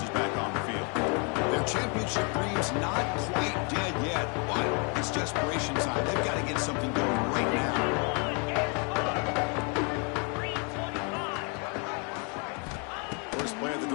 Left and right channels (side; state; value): right; quieter; 35.2 dB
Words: is back on the field. Their championship dream's not quite dead yet, but it's desperation time. They've got to get something going right now. First play of the